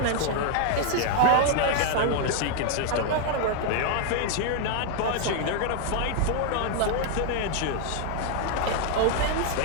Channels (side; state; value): both; different; correlation 0.00